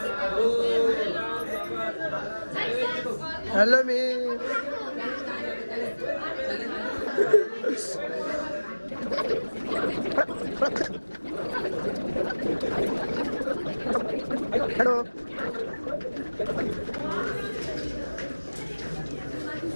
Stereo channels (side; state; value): both; inverted; correlation -1.00